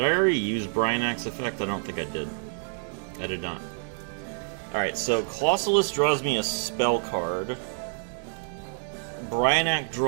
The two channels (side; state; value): left; silent; 60 dB below the other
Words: I already use Bryanac's effect? I don't think I did. I did not. Alright, so Colossalus draws me a spell card. Bryanak